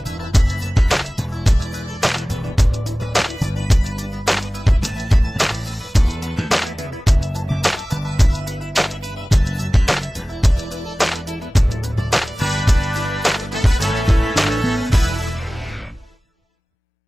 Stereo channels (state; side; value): normal; both; correlation 0.97